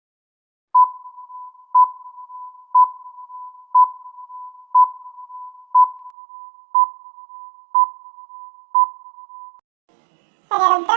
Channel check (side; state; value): left; drops out; at 6.1 s